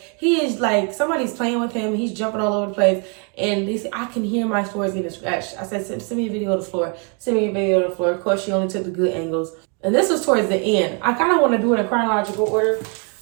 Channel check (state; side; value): quieter; left; 37.6 dB